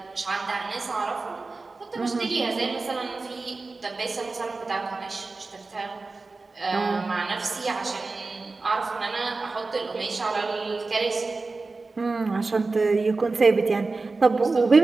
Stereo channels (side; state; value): left; quieter; 3.7 dB